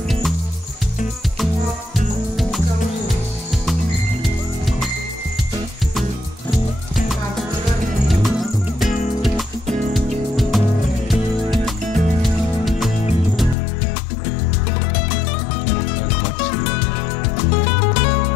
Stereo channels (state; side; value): drops out; right; at 13.6 s